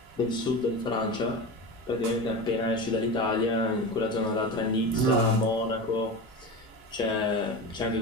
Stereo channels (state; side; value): normal; both; correlation 0.26